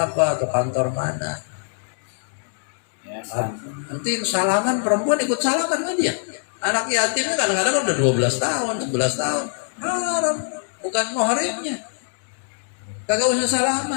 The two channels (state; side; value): silent; right; digital silence